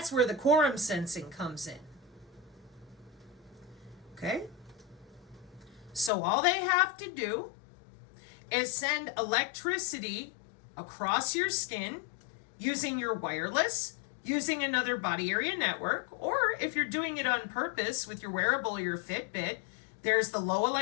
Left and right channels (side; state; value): right; drops out; at 6.1 s